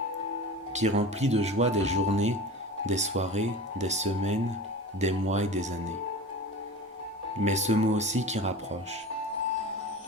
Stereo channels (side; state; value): both; normal; correlation 0.33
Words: qui remplit de joie des journées, des soirées, des semaines, des mois et des années. Mais ce mot aussi qui rapproche,